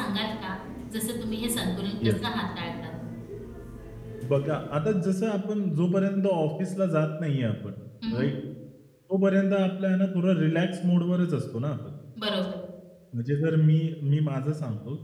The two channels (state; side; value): identical; both; correlation 1.00